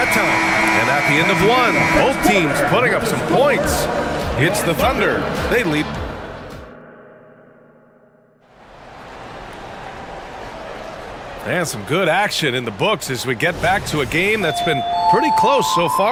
time. And at the end of one, both teams putting up some points. It's the Thunder. They lead. And some good action in the books as we get back to a game that's been pretty close so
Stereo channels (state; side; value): identical; both; correlation 1.00